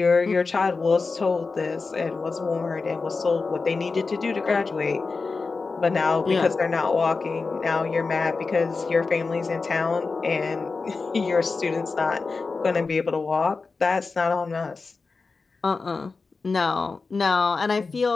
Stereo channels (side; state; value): right; quieter; 4.3 dB